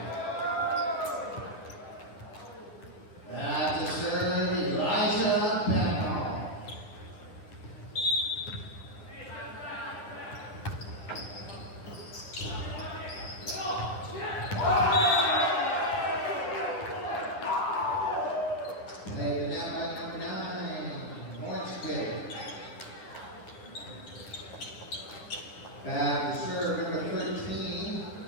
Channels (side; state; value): right; late; 9.8 ms